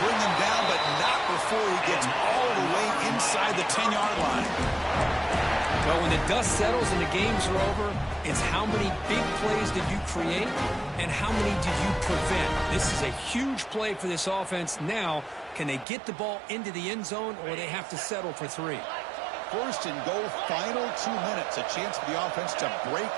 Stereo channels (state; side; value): drops out; left; at 15.9 s